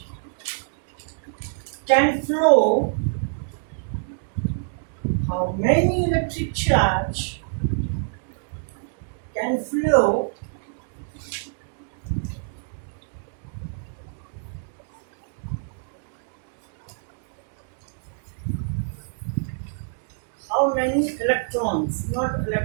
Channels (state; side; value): silent; left; digital silence